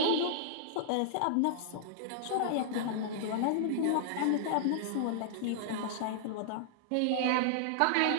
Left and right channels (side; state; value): both; different; correlation -0.01